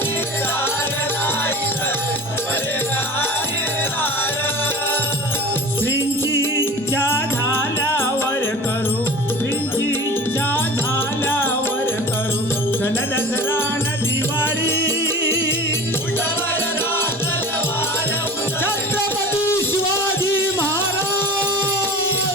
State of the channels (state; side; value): normal; both; correlation 0.38